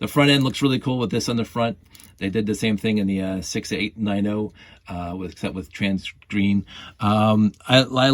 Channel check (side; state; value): both; identical; correlation 1.00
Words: front end looks really cool with this on the front. They did the same thing in the 6890, except with trans green. I